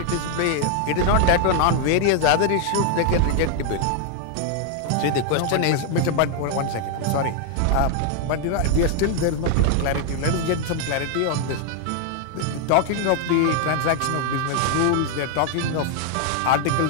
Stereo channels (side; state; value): both; different; correlation 0.00